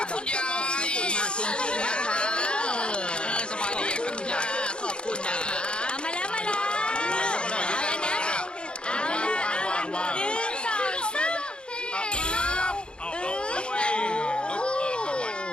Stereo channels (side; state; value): right; late; 0.054 ms